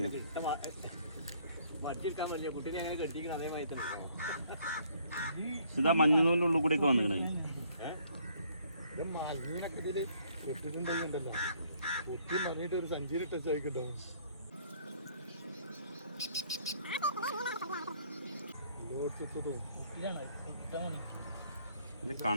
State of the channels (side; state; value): both; inverted; correlation -0.63